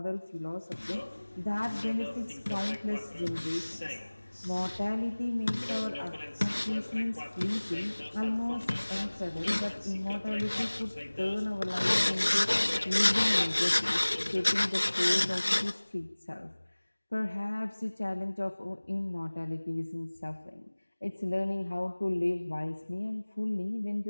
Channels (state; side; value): inverted; both; correlation -1.00